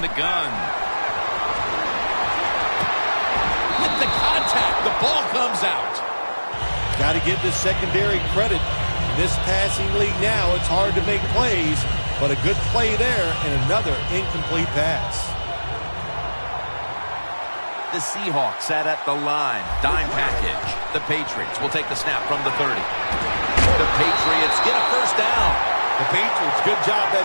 the gun. With the contact, the ball comes out. Got to give the secondary credit. In this passing league now, it's hard to make plays, but a good play there and another incomplete pass. The Seahawks sat at the line. Dime package. The Patriots will take the snap from the 30. The Patriots get a first down. The Patriots, good job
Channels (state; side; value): inverted; both; correlation -1.00